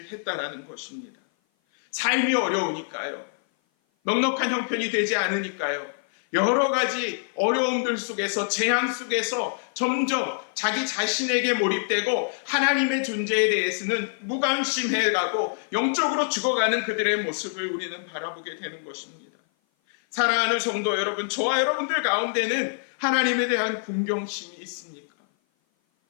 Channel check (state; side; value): silent; right; 56 dB below the other